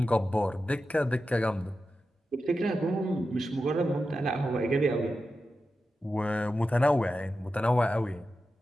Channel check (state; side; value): normal; both; correlation 0.91